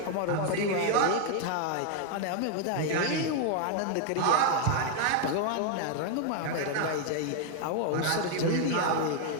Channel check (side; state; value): both; different; correlation 0.00